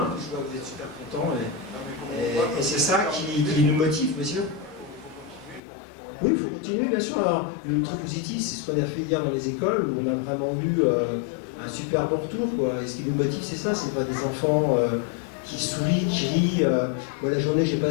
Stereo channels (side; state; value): right; drops out; at 5.6 s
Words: Je vois que vous êtes super contents et c'est ça qui nous motive, monsieur. Oui, il faut continuer, bien sûr. Alors, le truc positif, c'est ce qu'on a fait hier dans les écoles, où on a vraiment eu un super bon retour, quoi. Et ce qui nous motive, c'est ça, c'est pas des enfants qui sourient, qui rient. Moi, la journée, j'ai